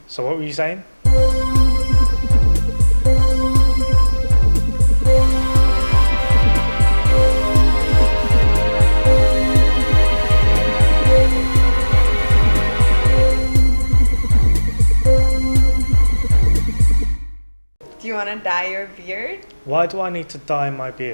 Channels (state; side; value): inverted; both; correlation -1.00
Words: So what were you saying? Do you want to dye your beard? Why do I need to dye my